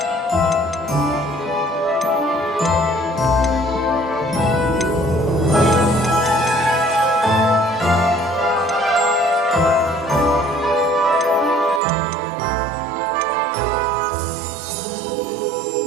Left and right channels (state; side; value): drops out; left; at 11.8 s